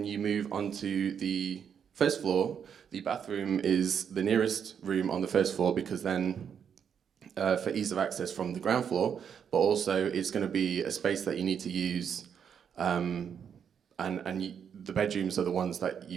you move onto the first floor, the bathroom is the nearest room on the first floor, because then for ease of access from the ground floor, but also it's going to be a space that you need to use, and the bedrooms are the ones that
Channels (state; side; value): quieter; left; 7.7 dB